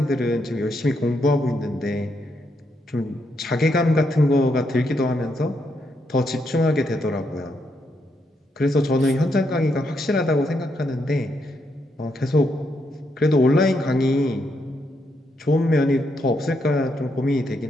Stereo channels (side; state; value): both; normal; correlation 0.79